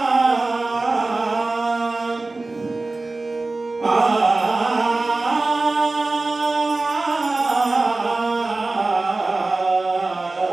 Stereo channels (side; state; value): left; quieter; 3.3 dB